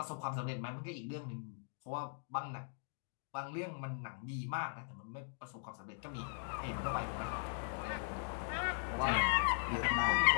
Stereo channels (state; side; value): silent; right; digital silence